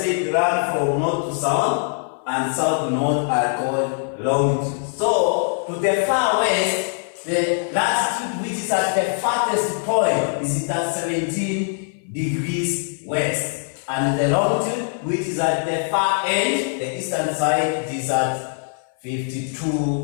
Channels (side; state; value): right; silent; 55 dB below the other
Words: run from north to south and south to north are called longitudes. So, to the far west, the latitude which is at the farthest point is at 17 degrees west. and the longitude, which is at the far end, the eastern side, is at